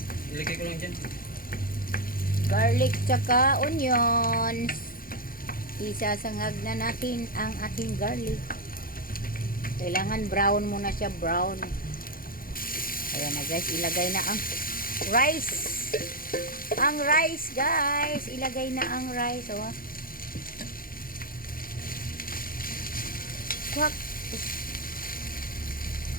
Ilagay ko lang dyan. Garlic tsaka onions. Isasangag na natin ang ating garlic. Kailangan brown muna siya, brown. Ayan na guys, ilagay na ang rice. Ang rice guys, ilagay na ang rice. Oh. Kwak.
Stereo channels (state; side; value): late; right; 0.42 ms